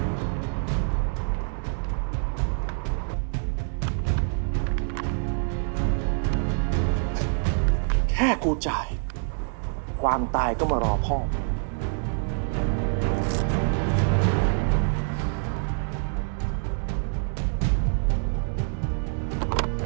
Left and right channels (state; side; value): silent; left; 60 dB below the other